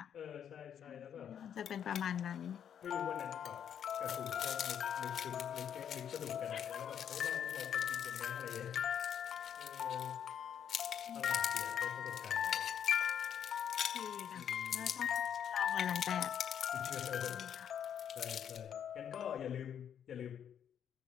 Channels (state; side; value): quieter; right; 8.8 dB